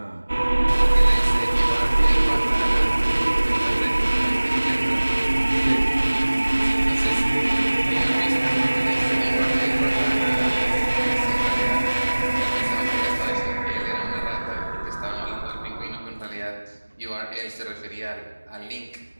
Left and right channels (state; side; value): inverted; both; correlation -1.00